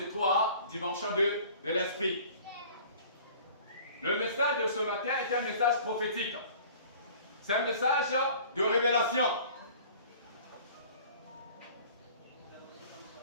3 dimensions de l'Esprit. Le message de ce matin est un message prophétique. C'est un message de révélation.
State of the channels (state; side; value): inverted; both; correlation -0.47